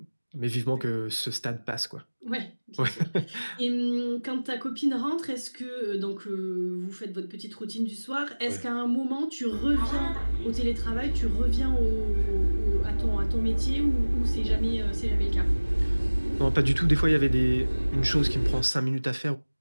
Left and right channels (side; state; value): both; inverted; correlation -1.00